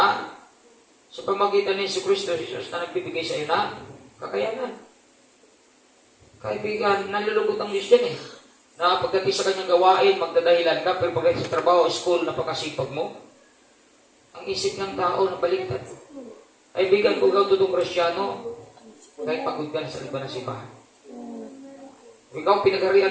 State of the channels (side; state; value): both; identical; correlation 1.00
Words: Sa pamagitan ni Kristo Jesus na nagbibigay sa iyo na kakayanan. Kaibigan, nalulugod ang Diyos yan Na pagdating sa kanyang gawain, magdadahilan ka, pero pagdating sa trabaho, school, napakasipag mo. Ang isip ng tao na baliktad. Kaibigan, kung ikaw totoong Kristyano, kahit pagod ka na sa iba na simbahan. Kung ikaw